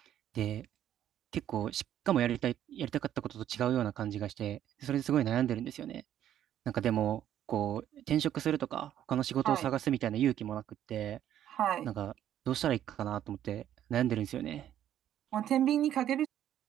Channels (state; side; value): quieter; left; 11.1 dB